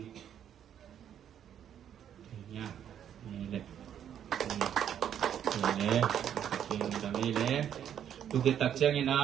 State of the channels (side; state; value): left; quieter; 9.5 dB